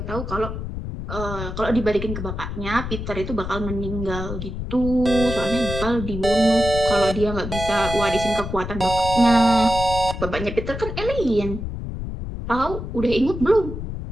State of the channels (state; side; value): noise; left; rumble, 6 dB below the sound